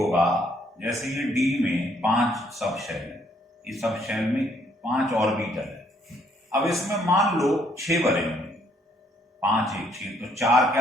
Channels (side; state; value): both; normal; correlation 0.67